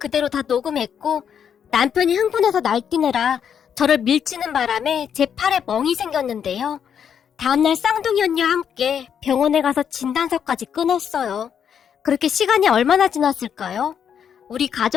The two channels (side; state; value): right; quieter; 8.1 dB